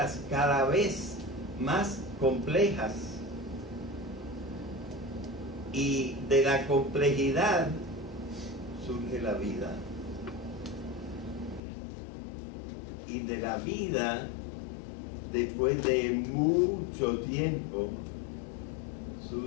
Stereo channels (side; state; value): right; drops out; at 11.6 s